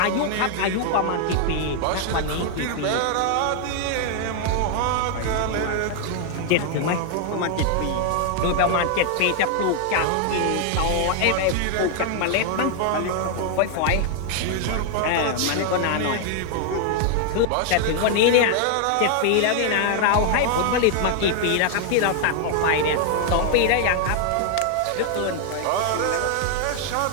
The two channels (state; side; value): different; both; correlation 0.00